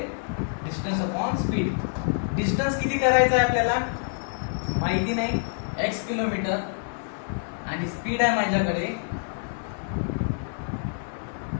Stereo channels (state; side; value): silent; right; digital silence